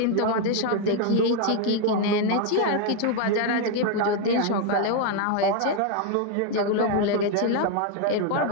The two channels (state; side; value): different; both; correlation 0.01